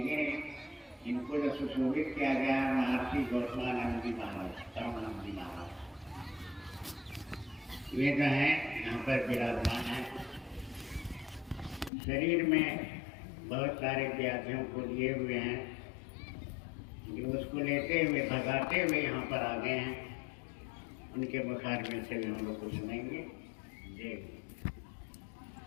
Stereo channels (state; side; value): drops out; right; at 11.9 s